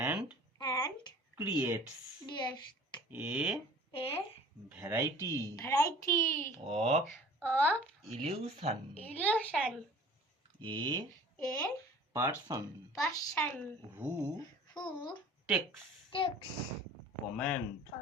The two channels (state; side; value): normal; both; correlation 0.46